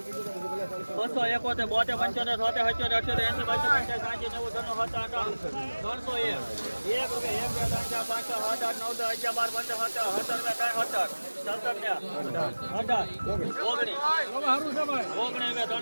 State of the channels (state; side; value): inverted; both; correlation -1.00